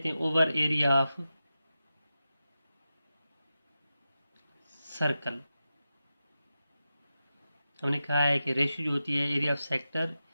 हैं ओवर एरिया ऑफ सर्कल। हमने कहा है कि रेशियो जो होती है एरिया ऑफ सेक्टर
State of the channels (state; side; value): inverted; both; correlation -0.92